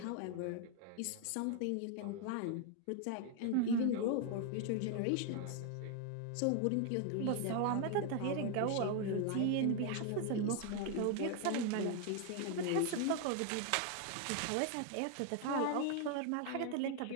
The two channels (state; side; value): different; both; correlation 0.01